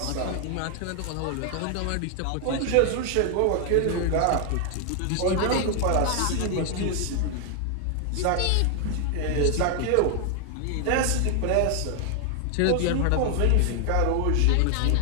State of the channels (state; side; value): different; both; correlation 0.00